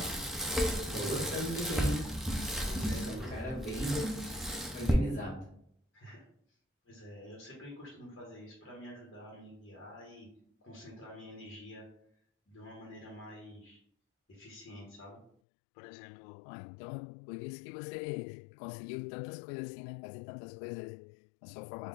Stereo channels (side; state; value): right; drops out; at 15.3 s